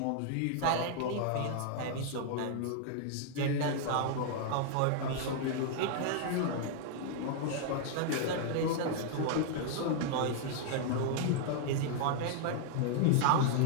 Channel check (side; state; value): both; different; correlation 0.00